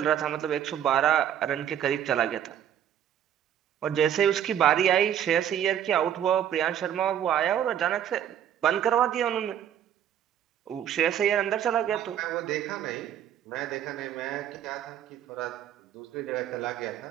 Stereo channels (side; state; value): left; quieter; 10.0 dB